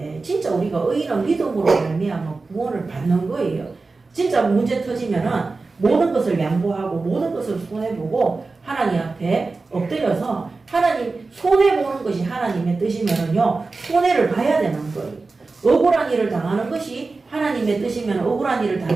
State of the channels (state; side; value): quieter; left; 3.8 dB